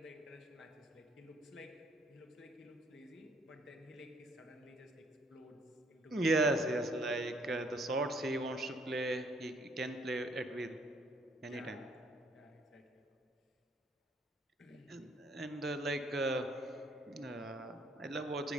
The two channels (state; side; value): normal; both; correlation 0.65